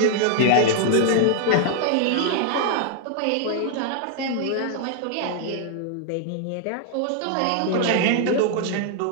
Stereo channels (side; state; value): both; different; correlation 0.00